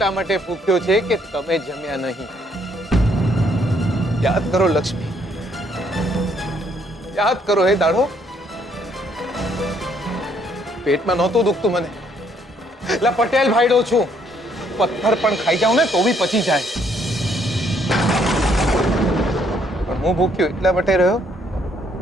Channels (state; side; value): normal; both; correlation 0.68